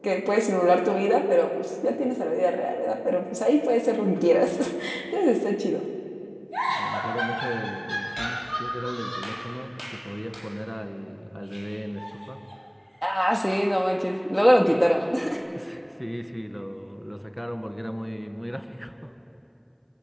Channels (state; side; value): identical; both; correlation 1.00